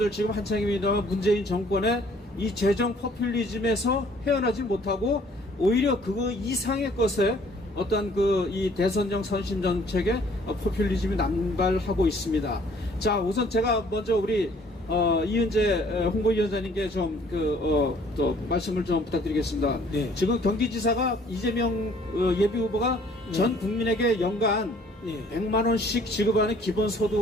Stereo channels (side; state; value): both; normal; correlation 0.58